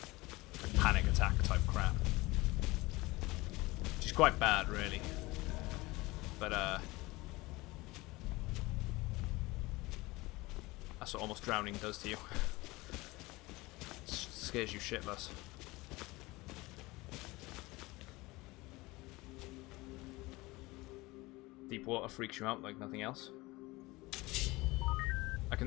Like panic attack type crap. Which is quite bad, really. But that's what almost drowning does to you. It scares you shitless. Deep water freaks you out like nothing else. I can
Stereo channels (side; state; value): right; quieter; 21.5 dB